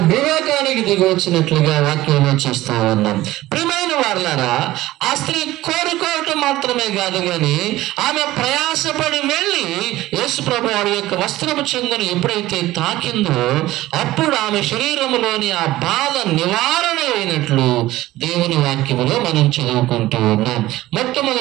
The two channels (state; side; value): quieter; left; 16.6 dB